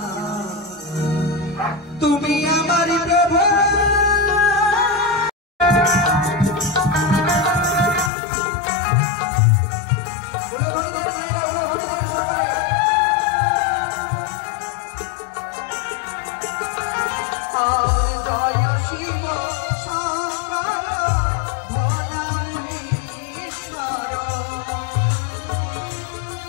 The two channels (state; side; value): drops out; right; at 8.1 s